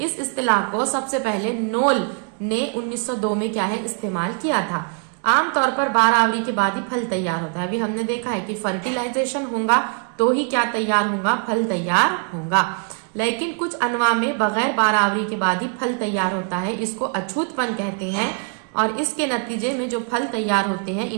इस्तिलाह को सबसे पहले नोल ने 1902 में क्या है इस्तेमाल किया था। आमतौर पर 12 आवरी के बाद ही फल तैयार होता है। अभी हमने देखा है कि फर्टिलाइजेशन होगा तो ही क्या तैयार होगा, फल तैयार होगा, लेकिन कुछ अनवा में बगैर 12 आवरी के बाद ही फल तैयार होता है, इसको अछूतपन कहते हैं। और इसके नतीजे में जो फल तैयार होते हैं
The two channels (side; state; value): left; quieter; 39.8 dB